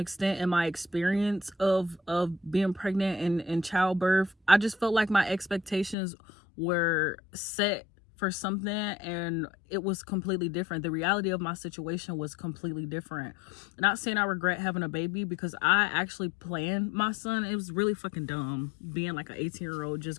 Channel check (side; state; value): right; drops out; at 6.0 s